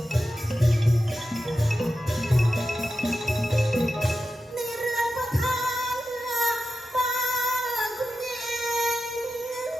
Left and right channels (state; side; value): normal; both; correlation 0.92